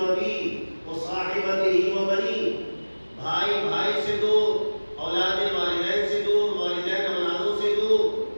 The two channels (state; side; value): inverted; both; correlation -1.00